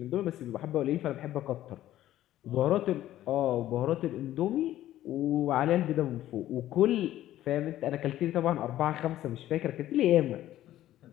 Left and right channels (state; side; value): quieter; right; 13.5 dB